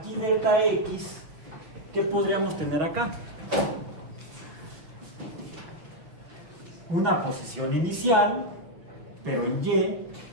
delta X, ¿qué podríamos tener acá? Una posición inicial, pero en Y,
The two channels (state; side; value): late; left; 6.1 ms